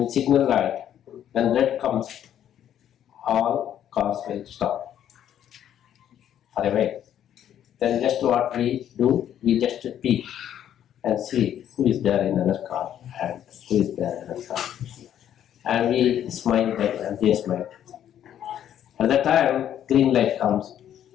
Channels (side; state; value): right; quieter; 10.4 dB